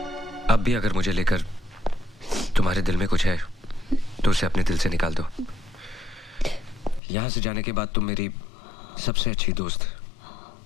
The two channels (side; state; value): right; drops out; at 7.0 s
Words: अब भी अगर मुझे लेकर तुम्हारे दिल में कुछ है तो उसे अपने दिल से निकाल दो। यहाँ से जाने के बाद तुम मेरी सबसे अच्छी दोस्त